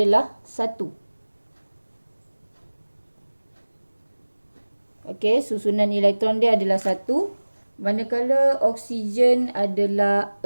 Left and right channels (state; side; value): inverted; both; correlation -1.00